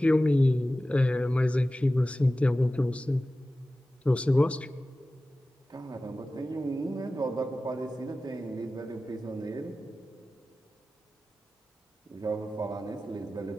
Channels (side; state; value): both; normal; correlation 0.96